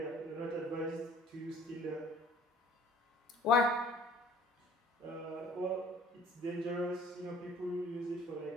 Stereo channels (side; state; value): both; normal; correlation 0.53